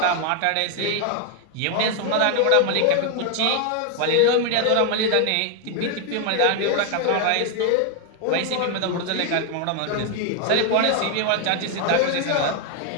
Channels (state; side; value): different; both; correlation 0.00